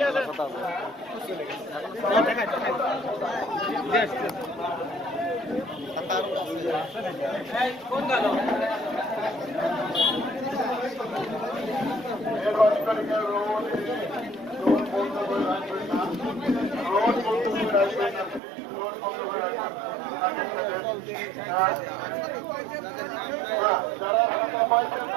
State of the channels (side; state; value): left; drops out; at 18.4 s